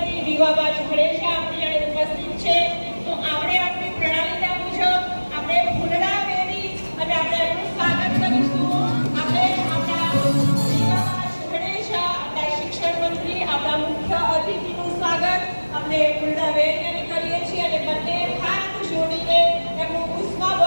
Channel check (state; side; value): inverted; both; correlation -1.00